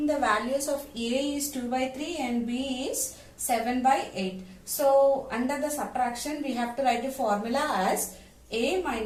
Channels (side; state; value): both; identical; correlation 1.00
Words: the values of A is 2 by 3 and B is 7 by 8. So under the subtraction we have to write a formula as A